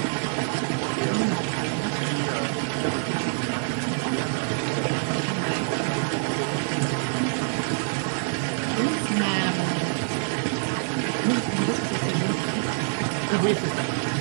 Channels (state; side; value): silent; left; digital silence